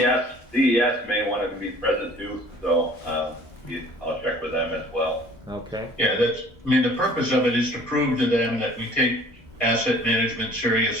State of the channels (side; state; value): both; normal; correlation 0.51